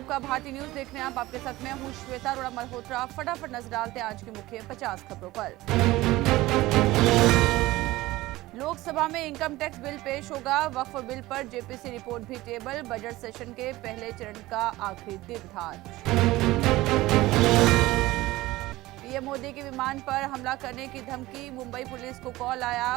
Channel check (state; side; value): quieter; left; 18.3 dB